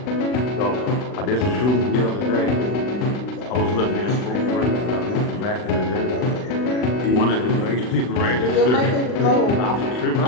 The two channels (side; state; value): right; late; 40 ms